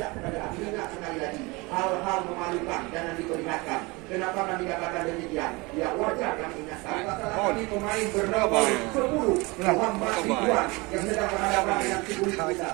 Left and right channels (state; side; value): quieter; left; 25.1 dB